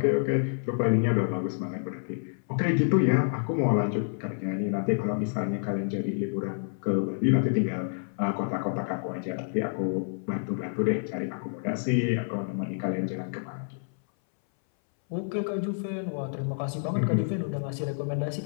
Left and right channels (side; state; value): right; silent; 59 dB below the other